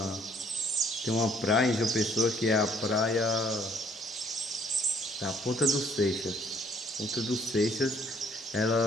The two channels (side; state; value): both; normal; correlation 0.62